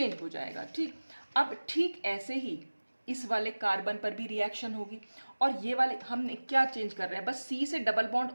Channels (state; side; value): inverted; both; correlation -1.00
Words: हो जाएगा। ठीक, अब ठीक ऐसे ही इस वाले कार्बन पर भी रिएक्शन होगी, और ये वाले हमने क्या चेंज कर रहे हैं, बस C से डबल बॉन्ड